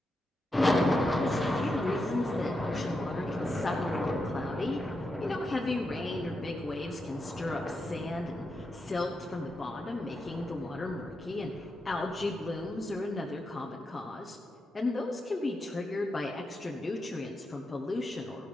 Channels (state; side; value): normal; both; correlation 0.86